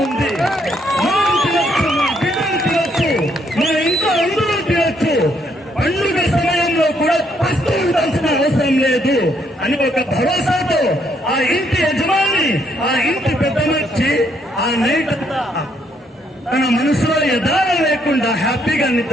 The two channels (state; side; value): normal; both; correlation 0.72